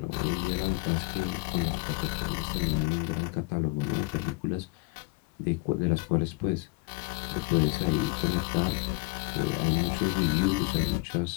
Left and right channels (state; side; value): quieter; right; 23.1 dB